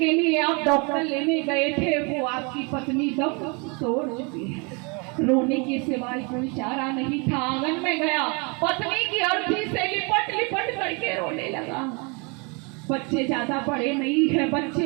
लिए आप डॉक्टर लेने गए थे वो आपकी पत्नी दम तोड़ चुकी है। रोने के सिवाय कोई चारा नहीं था। आंगन में गया, पत्नी की अर्थी से लिपट लिपट करके रोने लगा। बच्चे ज्यादा बड़े नहीं है,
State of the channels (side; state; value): left; quieter; 31.7 dB